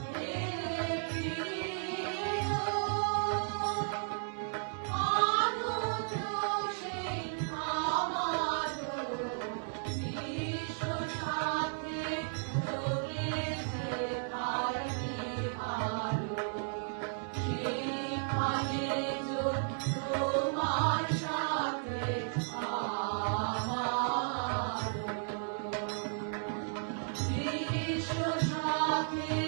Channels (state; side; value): silent; left; 55 dB below the other